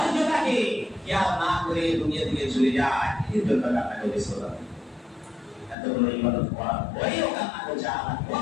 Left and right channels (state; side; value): drops out; right; at 5.8 s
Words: খেয়াল না করে দুনিয়া থেকে চলে যায়, এই জন্য কান্না করেছে। এতগুলো ইবাদত করার পরেও কান্না করছে, আমার